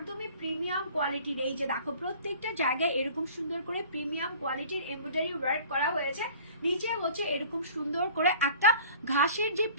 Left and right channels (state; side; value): inverted; both; correlation -0.47